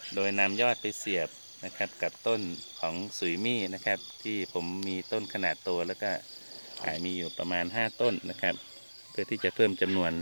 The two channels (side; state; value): both; inverted; correlation -1.00